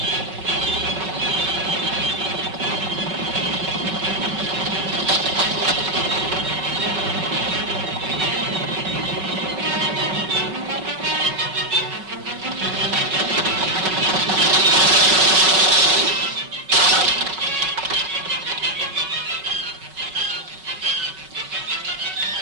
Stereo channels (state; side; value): late; left; 5.3 ms